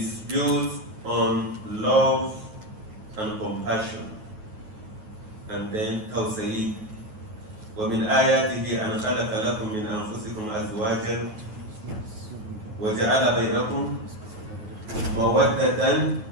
built on love and compassion, and then tawsayi. ومن آياته أن خلق لكم من أنفسكم أزواجا وجعل بينكم مودة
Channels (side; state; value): left; late; 9.3 ms